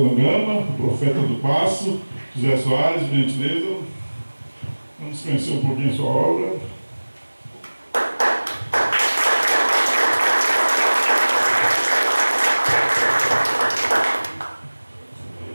o Profeta do Passo, José Soares, gentileza. Vamos conhecer um pouquinho a sua obra.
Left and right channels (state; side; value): inverted; both; correlation -1.00